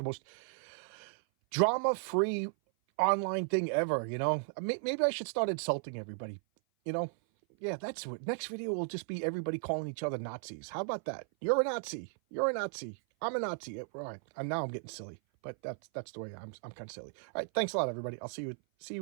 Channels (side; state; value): left; silent; 54 dB below the other